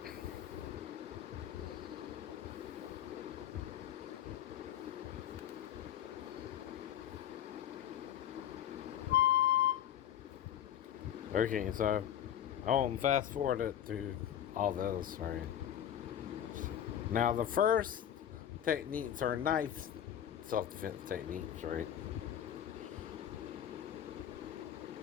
Okay, so I'll fast forward it through all those, right? Now, the first techniques are knife self defense techniques, right?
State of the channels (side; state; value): right; quieter; 10.3 dB